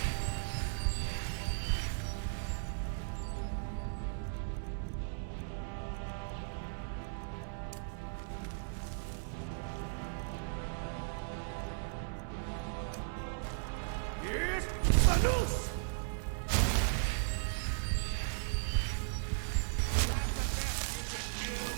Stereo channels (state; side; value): silent; left; 53 dB below the other